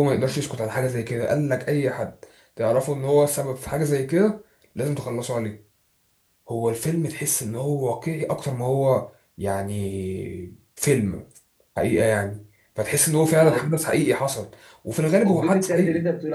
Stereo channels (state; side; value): identical; both; correlation 1.00